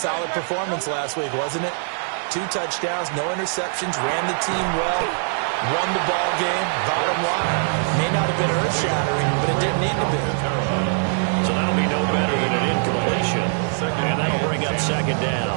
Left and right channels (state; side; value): silent; left; 56 dB below the other